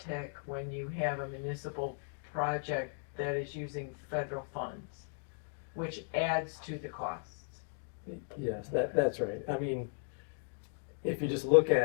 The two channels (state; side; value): silent; right; digital silence